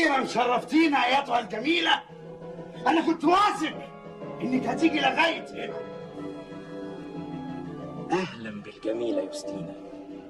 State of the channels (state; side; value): identical; both; correlation 1.00